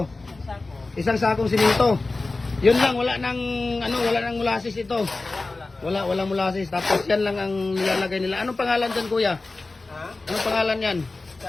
Sako. Isang sakong simento. Yun lang, wala nang molasses ito. Wala molasses. Tapos yan lang ang nilalagay nila. Anong pangalan diyan, kuya? Ha? Anong pangalan yan?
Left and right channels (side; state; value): right; quieter; 3.4 dB